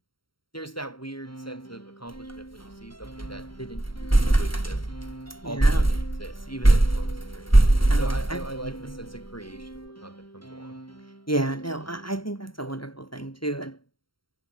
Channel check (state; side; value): late; right; 0.73 ms